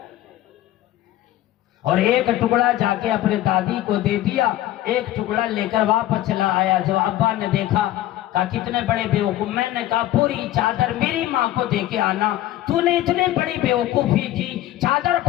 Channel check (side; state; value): right; quieter; 14.2 dB